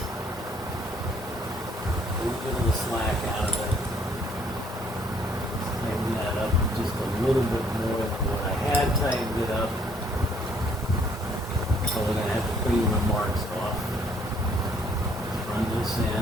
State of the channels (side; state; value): both; normal; correlation 0.64